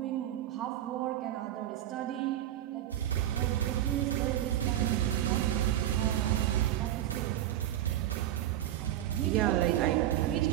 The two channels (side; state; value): left; quieter; 12.5 dB